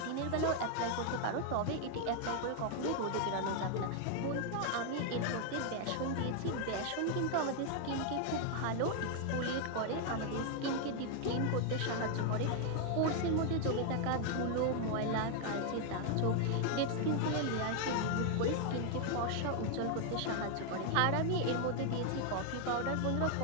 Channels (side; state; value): both; different; correlation 0.00